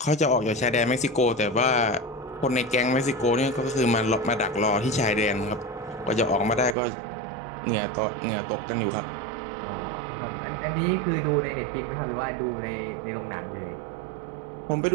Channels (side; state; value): left; drops out; at 6.8 s